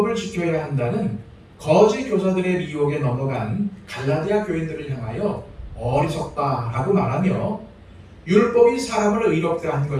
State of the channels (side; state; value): both; identical; correlation 1.00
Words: 지켜야 한다는 거짓 교사들의 미혹에 넘어간 갈라디아 교인들을 향하여 어리석다라고 말하며 율법이 사람을 의롭게 한